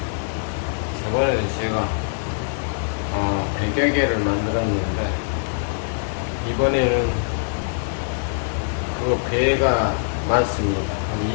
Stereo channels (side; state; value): right; silent; 55 dB below the other